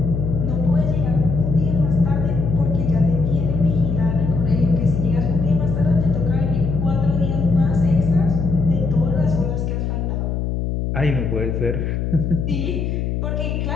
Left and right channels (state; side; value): noise; left; hum, 1 dB below the sound